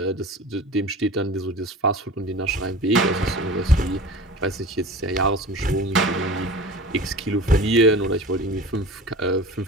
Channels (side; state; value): both; normal; correlation 0.36